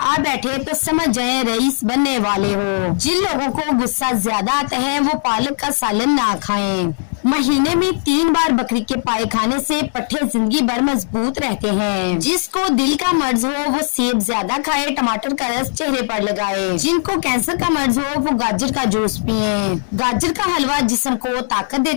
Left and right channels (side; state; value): right; silent; digital silence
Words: آ بیٹھے تو سمجھ جائیں رئیس بننے والے ہو۔ جن لوگوں کو غصہ زیادہ آتا ہے وہ پالک کا سالن نہ کھائیں۔ مہینے میں 3 بار بکری کے پائے کھانے سے پٹھے زندگی بھر مضبوط رہتے ہیں۔ جس کو دل کا مرض ہو وہ سیب زیادہ کھائے، ٹماٹر کا رس چہرے پر لگائے۔ جن کو کینسر کا مرض ہو وہ گاجر کا جوس پئیں۔ گاجر کا حلوہ جسم کو طاقت